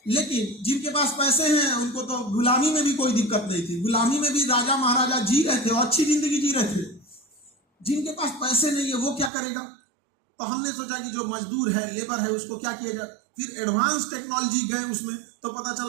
लेकिन जिनके पास पैसे हैं उनको तो गुलामी में भी कोई दिक्कत नहीं थी, गुलामी में भी राजा महाराजा जी रहे थे और अच्छी जिंदगी जी रहे थे। जिनके पास पैसे नहीं है वो क्या करेगा? तो हमने सोचा कि जो मजदूर है, लेबर है, उसको क्या किया जाए। फिर एडवांस टेक्नोलॉजी गए उसमें, तो पता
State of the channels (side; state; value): left; drops out; at 9.3 s